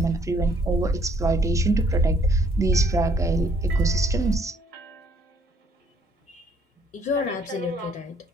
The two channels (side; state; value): both; normal; correlation 0.64